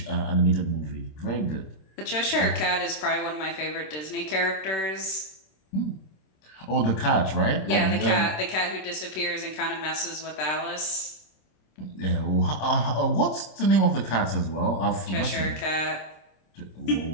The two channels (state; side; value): late; right; 26 ms